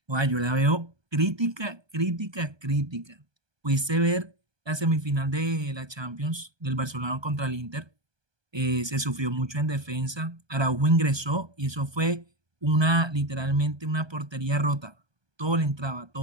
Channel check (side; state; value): left; late; 1.2 ms